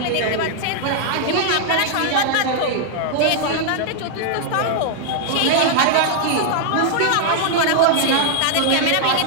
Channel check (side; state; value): both; different; correlation 0.00